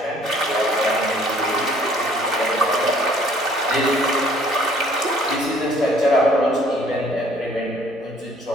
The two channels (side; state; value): both; normal; correlation 0.58